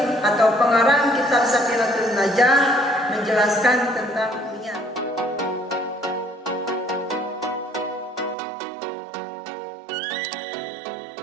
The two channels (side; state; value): left; drops out; at 8.3 s